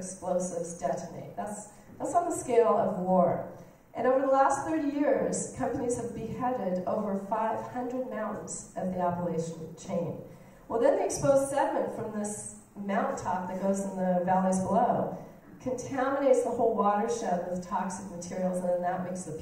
detonate. That's on the scale of war. And over the last 30 years, companies have beheaded over 500 mountains of the Appalachian chain. Well, then the exposed sediment from this mountaintop that goes in the valleys below contaminates the whole watershed with toxic materials, and then that makes the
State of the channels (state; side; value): identical; both; correlation 1.00